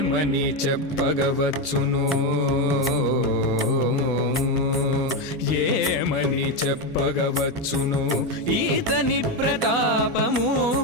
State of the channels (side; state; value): both; normal; correlation 0.10